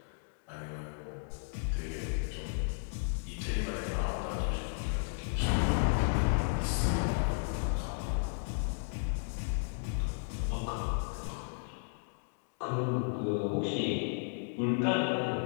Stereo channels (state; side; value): silent; right; digital silence